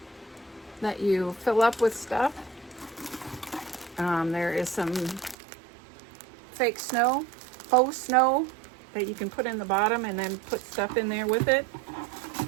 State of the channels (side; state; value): left; drops out; at 5.4 s